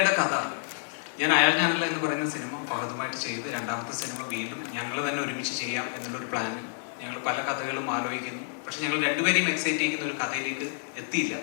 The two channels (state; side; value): silent; right; digital silence